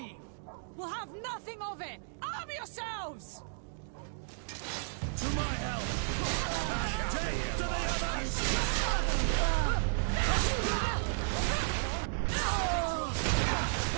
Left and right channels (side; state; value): left; silent; digital silence